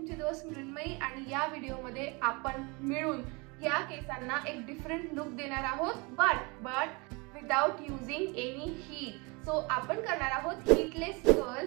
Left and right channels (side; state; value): left; quieter; 28.5 dB